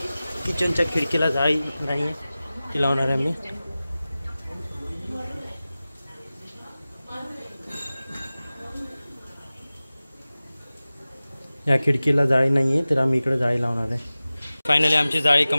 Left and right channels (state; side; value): inverted; both; correlation -0.97